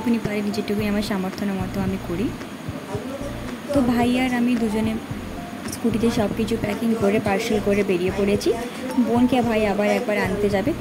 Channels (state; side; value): identical; both; correlation 1.00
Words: পারি যেটুকুনি আমার সামর্থ্য মতো আমি করি। তো ভাই আর আমি দুজনে স্কুটিতে সব কিছু প্যাকিং করে পার্সেল করে বেরিয়ে পড়েছি। বোনকে ভাই আবার একবার আনতে যাবে,